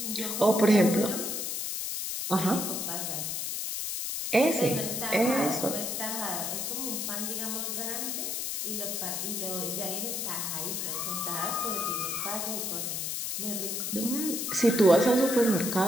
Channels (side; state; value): left; noise; hiss, 2 dB below the sound